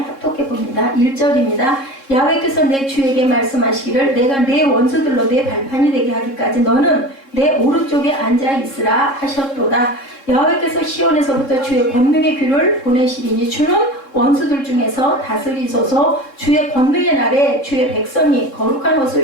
봅니다. 1절입니다. 야훼께서 내 주에게 말씀하시기를 내가 내 원수들로 내 발판이 되게 하기까지 너는 내 오른쪽에 앉아 있으라 하셨도다. 야훼께서 시온에서부터 주의 권능의 귀를 보내시리니 주는 원수들 중에서 다스리소서. 주의 권능의 날에 주의 백성이 거룩한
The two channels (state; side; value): late; right; 3.7 ms